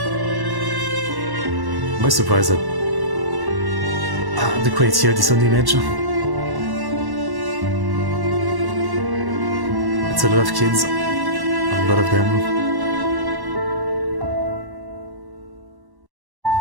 I'm surprised at the quality of this own image. It's a lot of kids, a lot of them.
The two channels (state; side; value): late; left; 1.1 ms